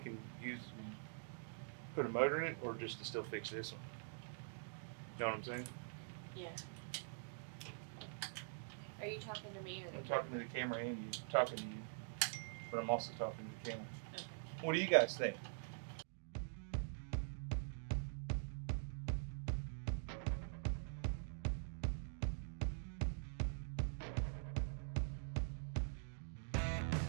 and put a motor in it, or just to still fix this one? You know what I'm saying? Yeah. Are you talking to me or I'm talking to the camera and you. I'm talking to you. But I'm also talking to the camera. Okay. What do you guys think?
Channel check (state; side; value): silent; left; digital silence